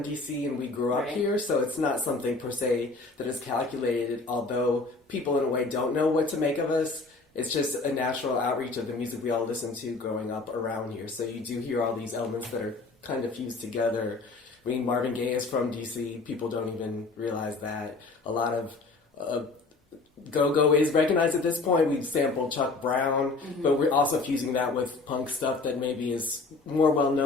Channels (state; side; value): quieter; right; 3.7 dB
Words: DC and we grew up here, so it's not something per se that is calculated, although people in a way don't know what to make of us. It's just a natural outreach of the music we all listen to growing up around here. So you do hear all these elements that are kind of fused together. I mean, Marvin Gaye is from DC. People don't even realize that. A lot of go-go is recognized at this point. We've sampled Chuck Brown, but we're also fusing that with punk stuff that maybe is more